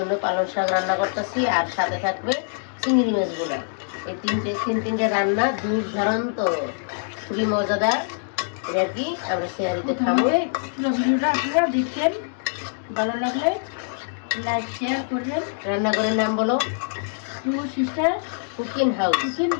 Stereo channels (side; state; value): right; silent; digital silence